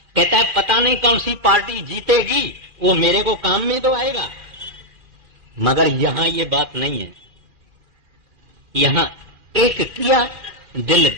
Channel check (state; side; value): late; left; 2.4 ms